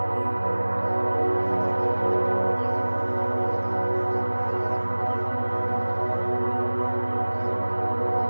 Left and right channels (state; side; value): inverted; both; correlation -1.00